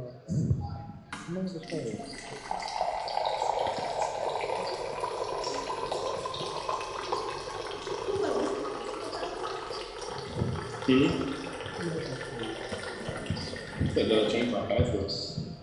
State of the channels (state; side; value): identical; both; correlation 1.00